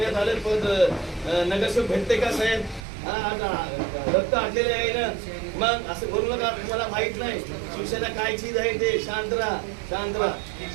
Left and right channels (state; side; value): drops out; left; at 2.9 s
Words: आले पण नगरसेवक भेटते का साहेब. रक्त आटलेले आहे ना. मग असं करू नका. तुम्हाला माहित नाही शिवसेना काय चीज आहे ते. शांत राहा शांत राहा.